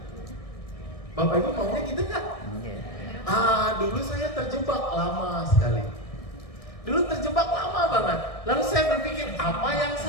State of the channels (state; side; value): late; right; 1.6 ms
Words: Bapak Ibu maunya gitu nggak? Dulu saya terjebak lama sekali. Dulu terjebak lama banget. Lalu saya berpikir, apa yang